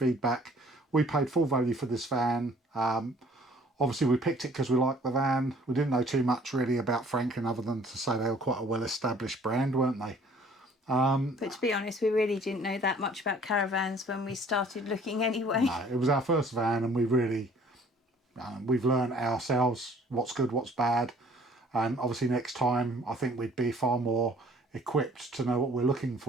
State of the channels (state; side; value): normal; both; correlation 0.55